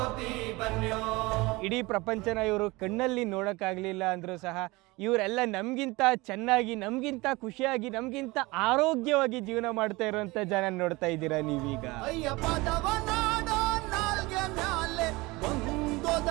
ಬನ್ಯೋ. ಇಡೀ ಪ್ರಪಂಚನ ಇವರು ಕಣ್ಣಲ್ಲಿ ನೋಡೋಕ್ಕಾಗಲಿಲ್ಲ ಅಂದರೂ ಸಹ ಇವರೆಲ್ಲ ನಮಗಿಂತ ಚೆನ್ನಾಗಿ, ನಮಗಿಂತ ಖುಷಿಯಾಗಿ, ನಮಗಿಂತ ಆರೋಗ್ಯವಾಗಿ ಜೀವನ ಮಾಡ್ತಾ ಇರುವಂಥ ಜನ ನೋಡ್ತಾ ಇದ್ದೀರಾ ನೀವೀಗ. ಅಯ್ಯ ಪದವ ನಾಡೋ ನಾಲ್ಗೆ ಮ್ಯಾಲೆ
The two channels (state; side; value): quieter; left; 22.6 dB